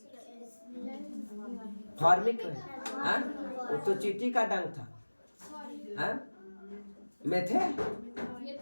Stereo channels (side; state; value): both; inverted; correlation -1.00